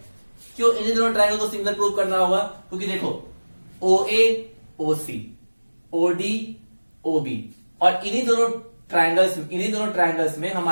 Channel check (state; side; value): inverted; both; correlation -1.00